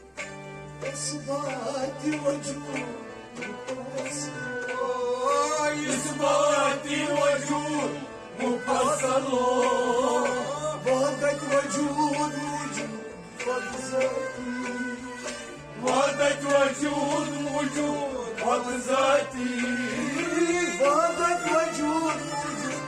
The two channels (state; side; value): identical; both; correlation 1.00